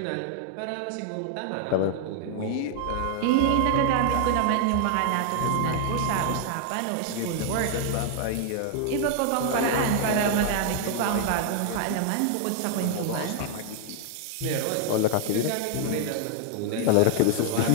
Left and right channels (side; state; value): both; different; correlation 0.00